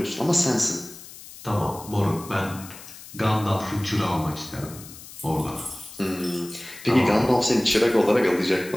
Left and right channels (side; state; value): left; noise; hiss, 16 dB below the sound